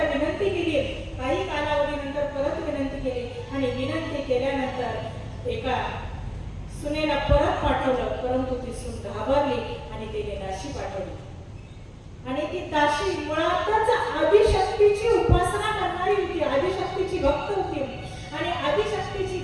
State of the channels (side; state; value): both; identical; correlation 1.00